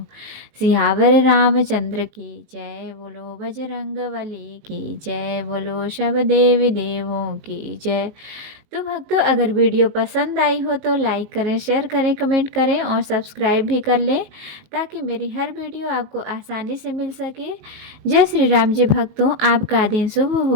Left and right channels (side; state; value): left; late; 19 ms